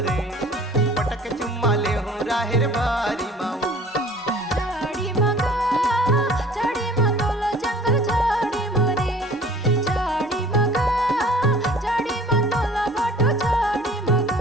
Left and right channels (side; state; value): both; normal; correlation 0.49